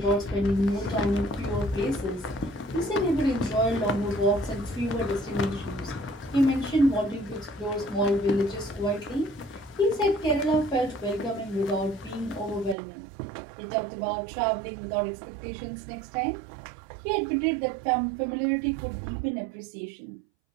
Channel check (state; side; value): drops out; left; at 12.8 s